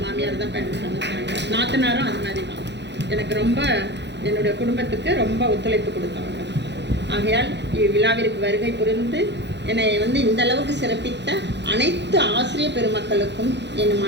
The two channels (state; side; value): late; left; 0.51 ms